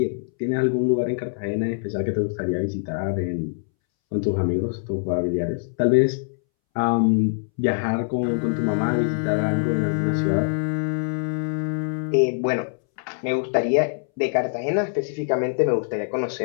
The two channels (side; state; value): right; silent; 62 dB below the other